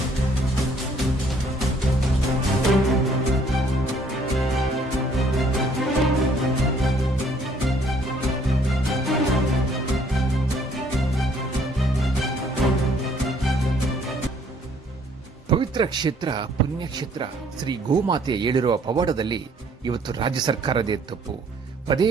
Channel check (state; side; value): normal; both; correlation 0.62